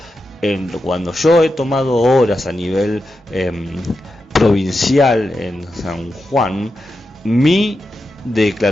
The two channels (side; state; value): both; normal; correlation 0.88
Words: cuando yo he tomado horas a nivel provincial en San Juan, mi